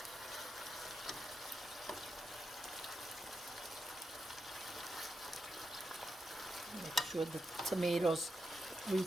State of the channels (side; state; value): both; normal; correlation 0.86